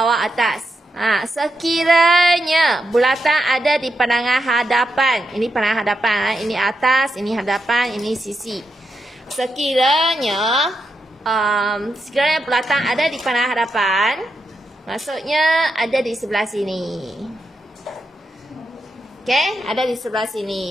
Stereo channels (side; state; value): both; normal; correlation 0.85